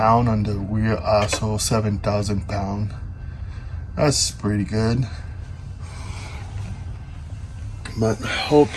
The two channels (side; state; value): both; identical; correlation 1.00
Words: on the rear axle, 7,000 pounds. That's pretty good. But hope